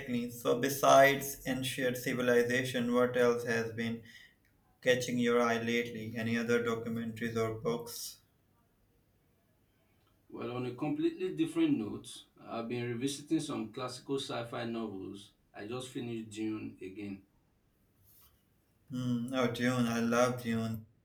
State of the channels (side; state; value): both; identical; correlation 1.00